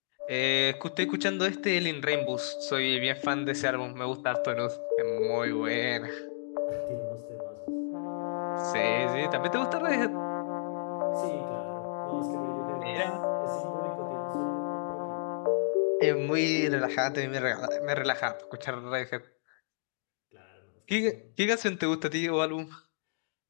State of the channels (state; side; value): silent; right; digital silence